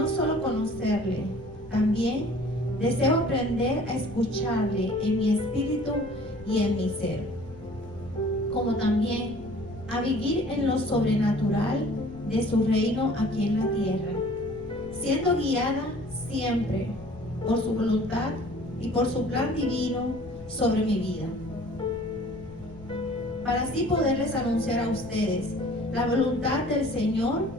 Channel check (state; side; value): noise; left; rumble, 19 dB below the sound